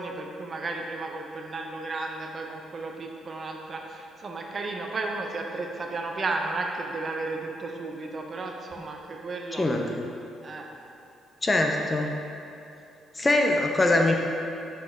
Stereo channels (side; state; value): both; normal; correlation 0.82